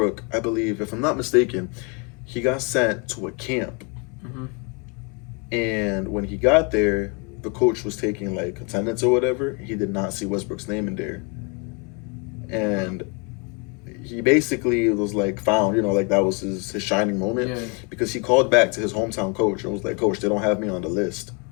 I believe, if I'm not mistaken, he got sent to a camp, and when he got there, the coach was taking like attendance or whatever. He did not see Westbrook's name in there, and he basically was like found, like that was his shining moment because he called back to his hometown coach and was like, "Coach, they don't have me on the list."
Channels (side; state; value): right; quieter; 33.4 dB